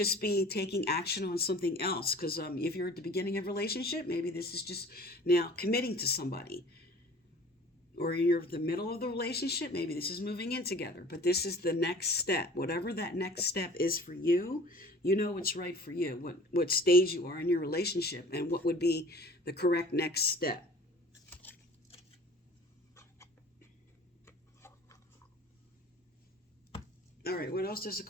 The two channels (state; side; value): normal; both; correlation 0.46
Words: be taking action on something else. Because if you're at the beginning of a relationship, maybe this is just now committing to somebody. Or you're at the middle of the relationship, maybe this is moving in together. But this is the next step. Whatever that next step is for you, you know what's right for you. What stage you are in your relationship and what would be the correct next step. All right, what else does